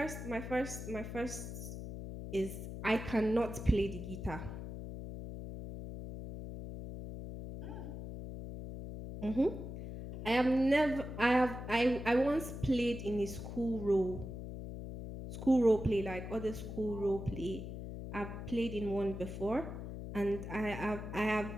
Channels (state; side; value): noise; left; hum, 8 dB below the sound